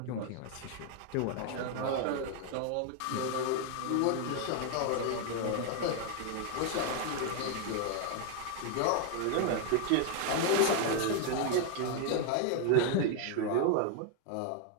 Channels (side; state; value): both; different; correlation 0.01